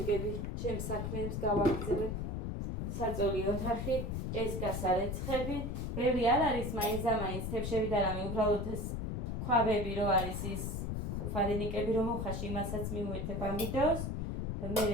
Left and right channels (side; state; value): left; noise; rumble, 2 dB below the sound